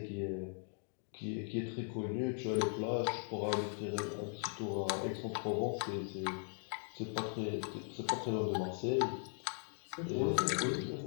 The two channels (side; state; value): right; silent; 52 dB below the other